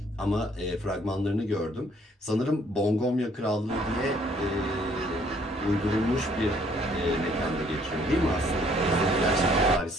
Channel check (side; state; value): both; normal; correlation 0.63